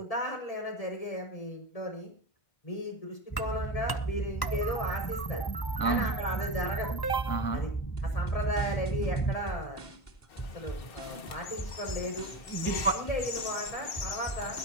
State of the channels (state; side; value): late; right; 1.0 ms